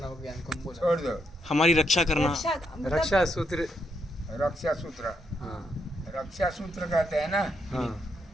छोड़ दो। हमारी रक्षा करना। रक्षा मतलब रक्षा सूत्र। रक्षा सूत्र, हाँ रक्षा सूत्र कहते हैं ना।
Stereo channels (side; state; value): both; normal; correlation 0.78